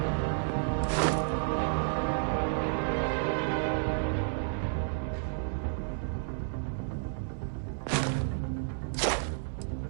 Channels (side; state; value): left; silent; digital silence